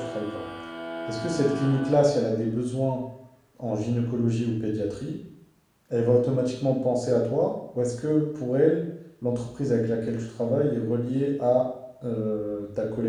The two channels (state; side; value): identical; both; correlation 1.00